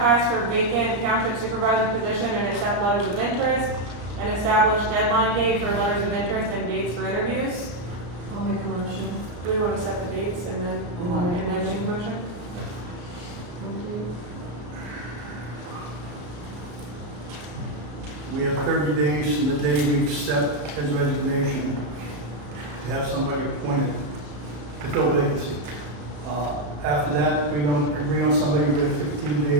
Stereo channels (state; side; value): late; left; 34 ms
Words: for vacant township supervisor position and accept letters of interest and establish deadline date for letters of interest and dates for interviews. I'll make a motion. Do we want to set the dates and then make a motion? Okay. We have 30 days from the day we accept his resignation to have somebody appointed to fill the vacancy. After that, if we don't agree on somebody, we have 15